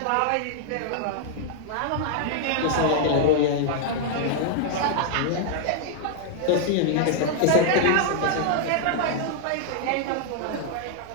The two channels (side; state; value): both; different; correlation 0.00